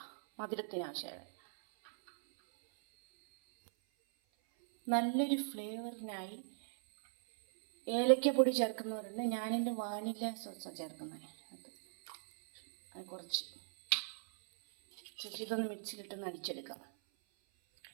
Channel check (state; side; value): silent; left; 52 dB below the other